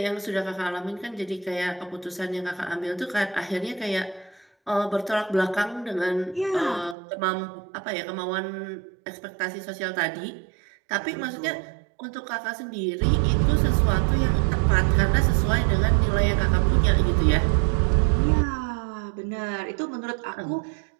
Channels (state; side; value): drops out; left; at 7.0 s